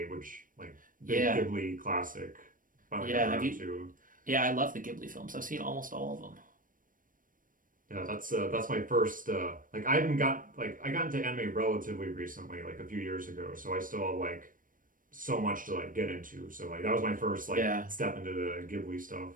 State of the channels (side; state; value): left; late; 0.40 ms